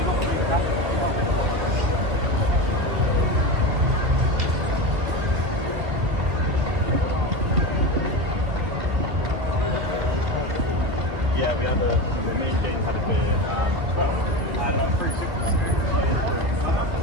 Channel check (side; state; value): left; late; 2.2 ms